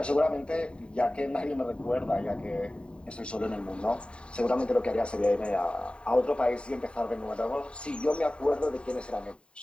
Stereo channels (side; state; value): right; late; 0.054 ms